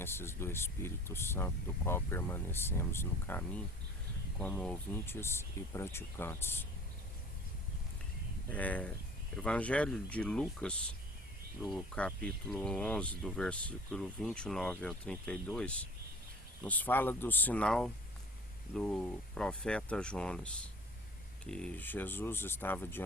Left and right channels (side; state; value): both; normal; correlation 0.46